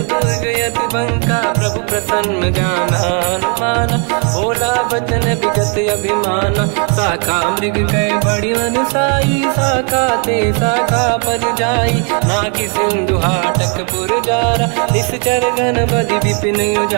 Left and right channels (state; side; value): quieter; left; 39.0 dB